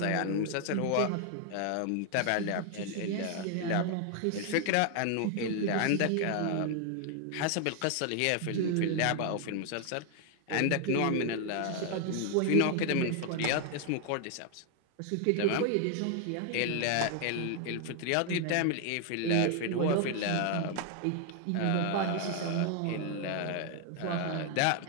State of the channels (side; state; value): both; different; correlation 0.00